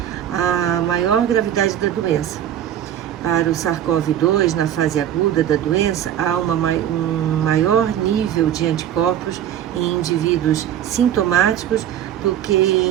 à maior gravidade da doença. Para o SARS-CoV-2, na fase aguda da doença, há um maior nível de anticorpos em indivíduos sintomáticos do que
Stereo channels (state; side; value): quieter; left; 10.7 dB